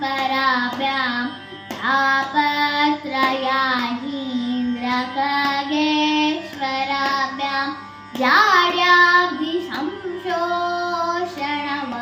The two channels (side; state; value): both; identical; correlation 1.00